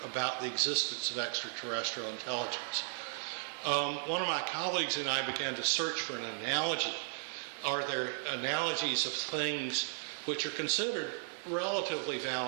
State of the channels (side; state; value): left; silent; digital silence